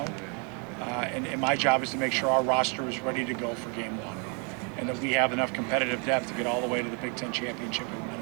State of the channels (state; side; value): quieter; left; 36.4 dB